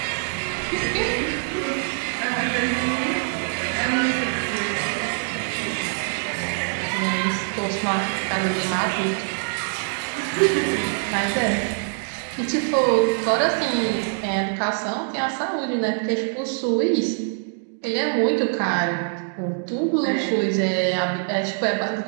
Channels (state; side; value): silent; left; digital silence